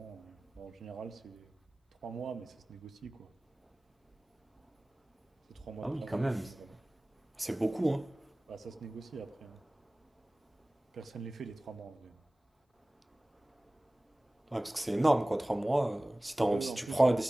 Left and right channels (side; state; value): both; normal; correlation 0.98